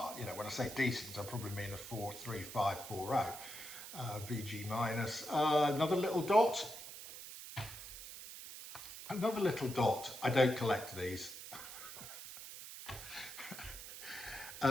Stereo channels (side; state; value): right; noise; hiss, 11 dB below the sound